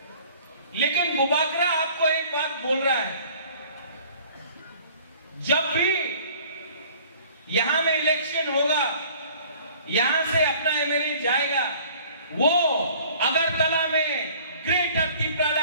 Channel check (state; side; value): inverted; both; correlation -0.51